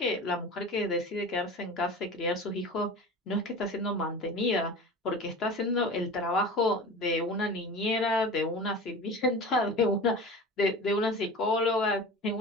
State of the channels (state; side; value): normal; both; correlation 0.34